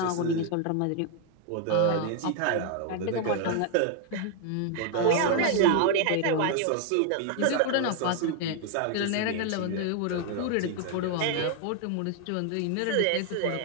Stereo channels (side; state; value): both; different; correlation 0.00